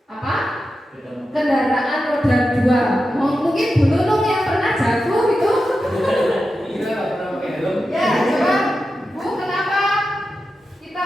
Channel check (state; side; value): normal; both; correlation 0.91